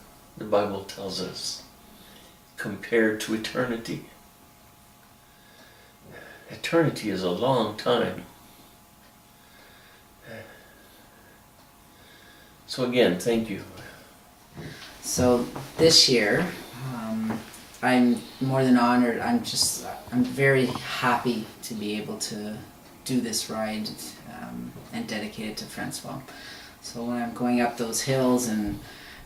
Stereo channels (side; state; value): both; identical; correlation 1.00